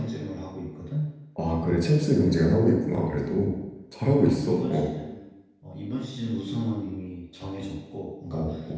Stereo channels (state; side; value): identical; both; correlation 1.00